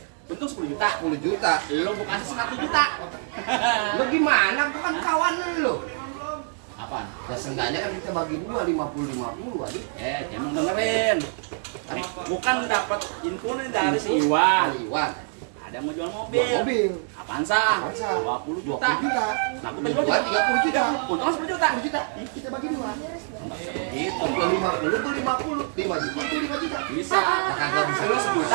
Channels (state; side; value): silent; left; 55 dB below the other